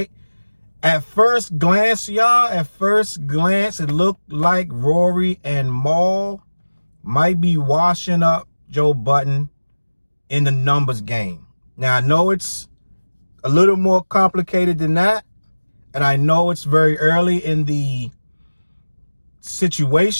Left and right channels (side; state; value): both; inverted; correlation -1.00